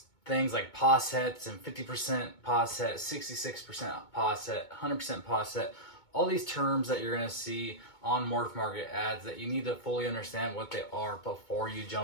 things like pos hets and 50% pos het, 66% pos het, 100% pos het, all these terms that you're going to see on Morph Market ads that you need to fully understand what they are before you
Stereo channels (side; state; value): right; late; 2.2 ms